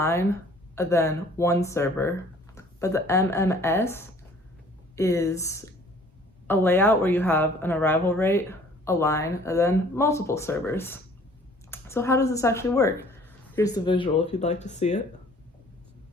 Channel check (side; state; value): both; normal; correlation 0.54